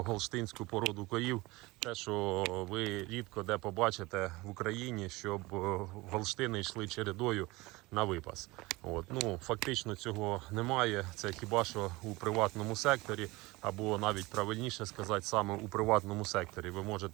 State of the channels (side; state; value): left; quieter; 22.0 dB